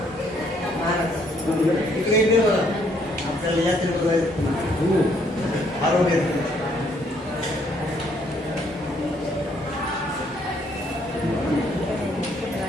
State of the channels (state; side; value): normal; both; correlation 0.67